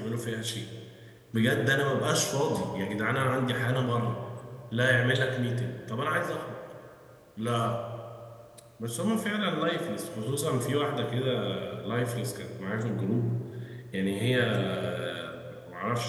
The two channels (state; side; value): identical; both; correlation 1.00